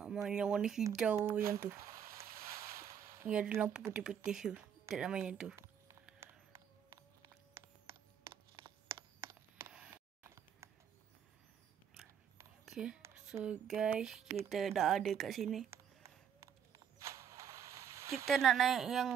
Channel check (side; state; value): left; quieter; 8.3 dB